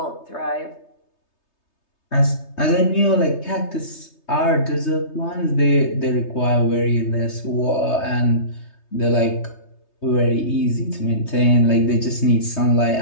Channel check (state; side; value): late; right; 3.3 ms